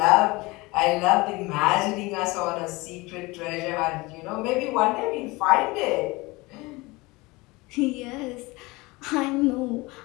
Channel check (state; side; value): quieter; right; 23.0 dB